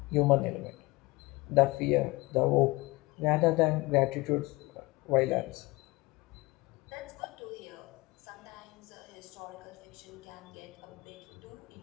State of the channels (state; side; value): quieter; right; 22.6 dB